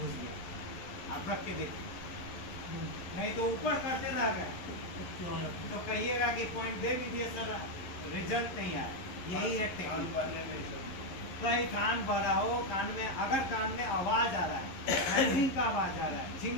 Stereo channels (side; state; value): right; late; 11 ms